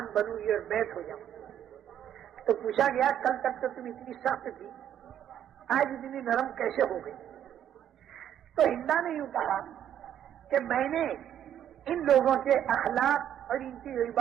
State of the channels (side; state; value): left; quieter; 10.2 dB